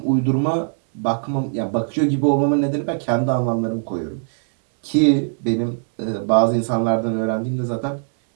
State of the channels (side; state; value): left; silent; 65 dB below the other